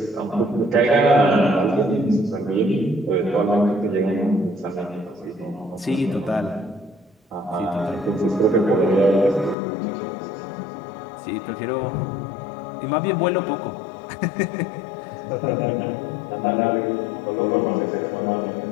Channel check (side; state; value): right; drops out; at 9.6 s